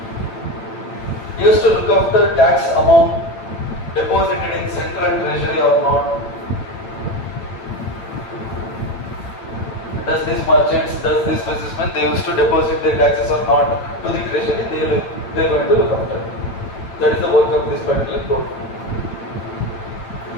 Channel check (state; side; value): late; right; 8.9 ms